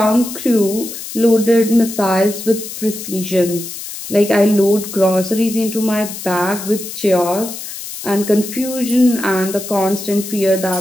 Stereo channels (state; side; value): noise; left; hiss, 10 dB below the sound